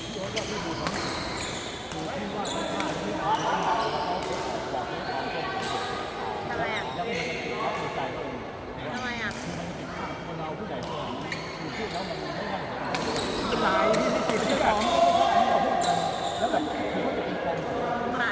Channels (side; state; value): both; identical; correlation 1.00